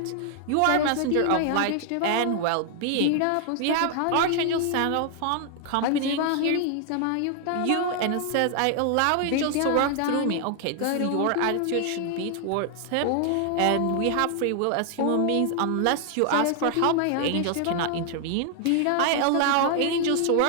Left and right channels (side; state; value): both; different; correlation 0.00